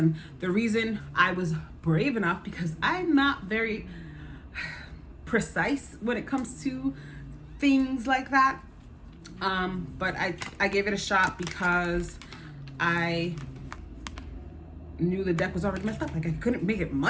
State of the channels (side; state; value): both; identical; correlation 1.00